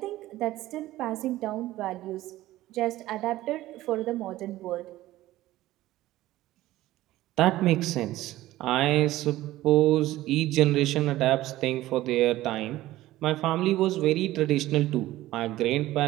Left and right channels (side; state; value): left; quieter; 16.0 dB